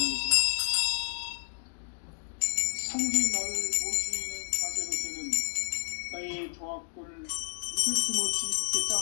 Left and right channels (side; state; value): right; silent; digital silence